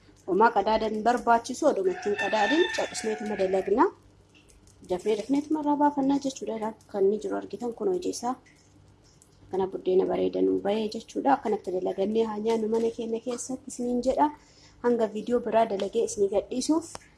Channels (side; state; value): both; identical; correlation 1.00